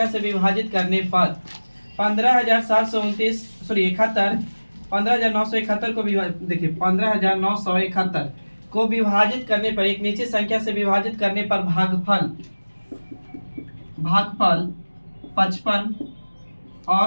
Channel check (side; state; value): both; inverted; correlation -1.00